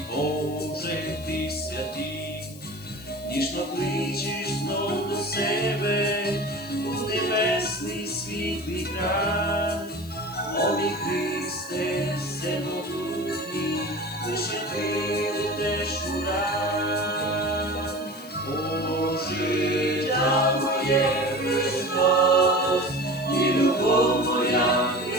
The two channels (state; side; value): noise; left; hiss, 20 dB below the sound